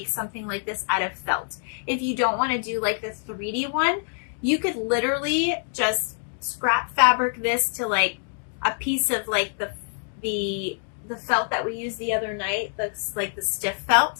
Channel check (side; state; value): right; silent; digital silence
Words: something like this out of felt. If you don't want to do like the 3D one, you could literally just scrap fabric this to like a piece of like the felt that we used the other night, that's like the stiff felt,